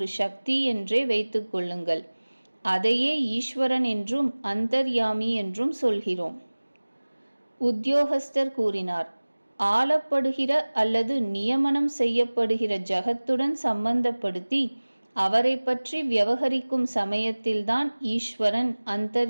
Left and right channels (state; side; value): inverted; both; correlation -1.00